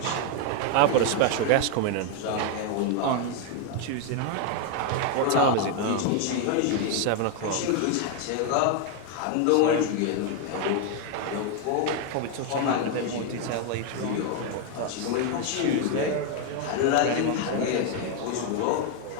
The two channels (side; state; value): both; different; correlation 0.01